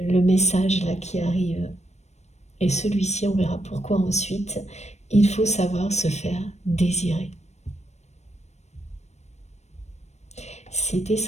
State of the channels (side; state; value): right; late; 0.32 ms